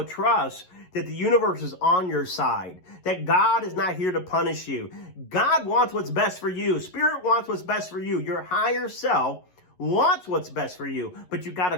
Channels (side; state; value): right; late; 11 ms